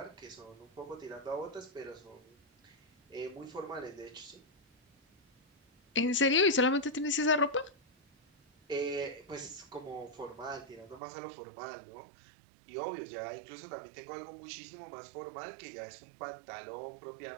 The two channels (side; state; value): left; drops out; at 11.0 s